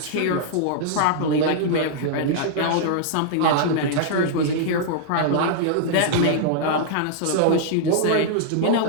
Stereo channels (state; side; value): different; both; correlation -0.01